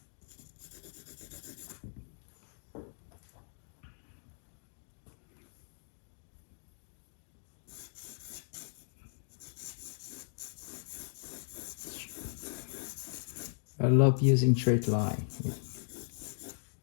I love using straight line.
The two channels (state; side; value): silent; right; digital silence